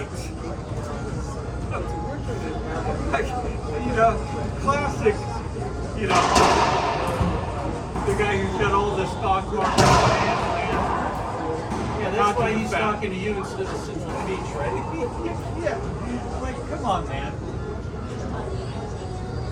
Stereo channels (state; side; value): identical; both; correlation 1.00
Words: Look, Like, you know, classic, you know, the guy who's got all the stock market. Yeah, that's why he's talking to you instead of sitting on the beach, right? Yeah, like, come on, man.